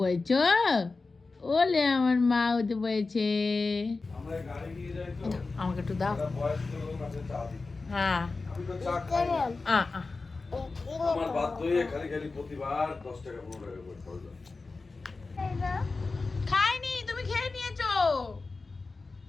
ওলে আমার মা উঠে পড়েছে। আমাকে একটু দাও। হ্যাঁ আমার বাধ্য হয়ে খালি খালি প্রতিবার 10 টাকা 15 টাকা করে খরচ হয়। খাইনি, তুমি খেয়ে নিয়েছো।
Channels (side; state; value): right; quieter; 3.8 dB